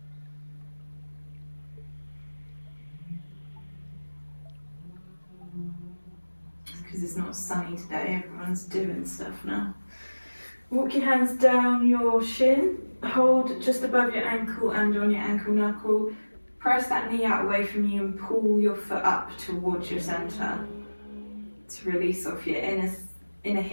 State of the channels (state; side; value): inverted; both; correlation -1.00